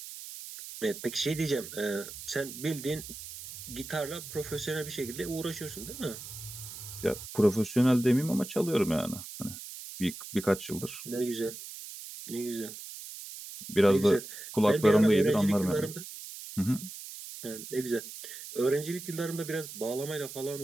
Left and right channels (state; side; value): noise; right; hiss, 11 dB below the sound